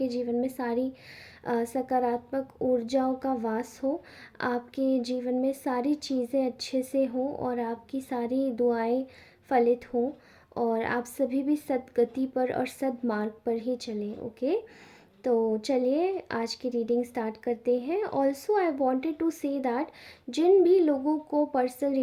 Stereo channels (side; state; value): both; identical; correlation 1.00